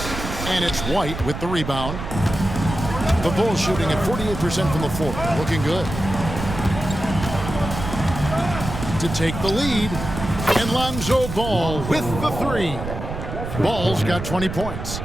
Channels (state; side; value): noise; right; rumble, 7 dB below the sound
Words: And it's White with the rebound. The Bulls shooting at 48% from the floor. Looking good. To take the lead. And Lonzo Ball with the 3. Ball's got 20 points.